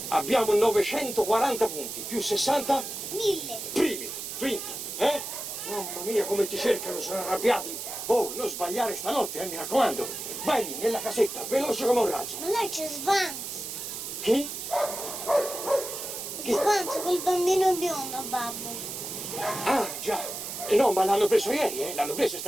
Abbiamo 940 punti, più 60? 1000. Primi, vinto, eh? Mamma mia, come ti cercano, sono arrabbiati. Oh, non sbagliare stanotte, mi raccomando. Vai lì, nella casetta, veloce come un razzo. Ma lei c'è Svans. Chi? Svans, quel bambino biondo, babbo. Ah, già. No, ma l'hanno preso ieri, eh? L'hanno preso, è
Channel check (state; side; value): noise; right; hiss, 7 dB below the sound